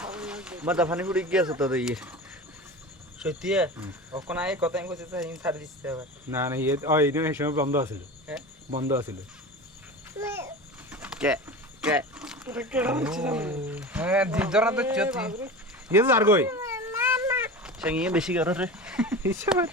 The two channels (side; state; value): both; normal; correlation 0.31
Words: মাথা ফানি ফুড়ি গিয়েছে তো ইয়ে সত্যি ওখান আগে কথা আমি কইতে চাই ছাড় দিতে হবে না না ইয়ে ওই দিন এই সময় বন্ধ আছিল হ্যাঁ বন্ধ আছিল কে কে হ্যাঁ দিদরা তো চতি ইয়ে তো আর কই সঙ্গে বেশি করে রে হিসাব